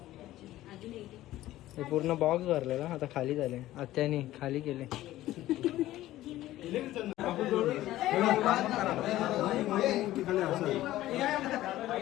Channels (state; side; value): quieter; right; 15.1 dB